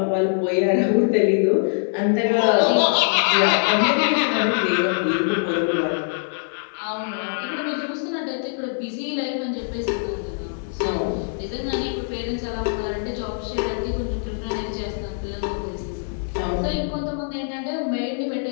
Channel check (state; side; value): silent; right; 61 dB below the other